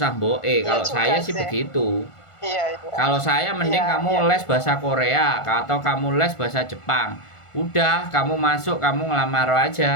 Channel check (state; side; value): late; right; 1.5 ms